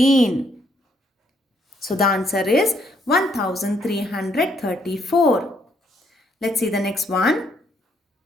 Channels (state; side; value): normal; both; correlation 0.71